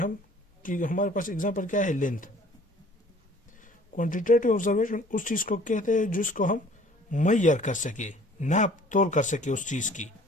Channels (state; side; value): normal; both; correlation 0.53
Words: पास एग्जांपल क्या है? लेंथ। क्वांटिटेटिव ऑब्जर्वेशन उस चीज़ को कहते हैं जिसको हम मैयर कर सके, नाप तोल कर सके उस चीज़ की।